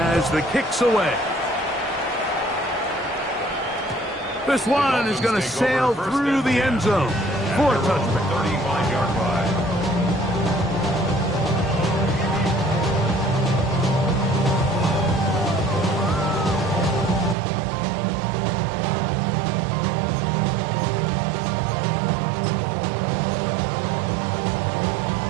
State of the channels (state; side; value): drops out; left; at 17.4 s